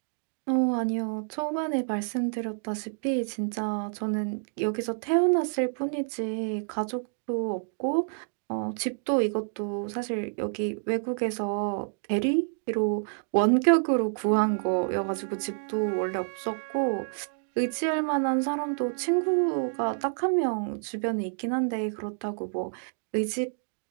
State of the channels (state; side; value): silent; left; digital silence